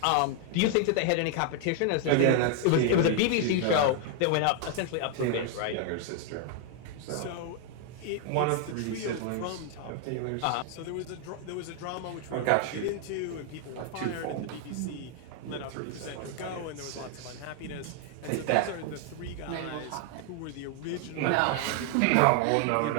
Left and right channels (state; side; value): different; both; correlation 0.00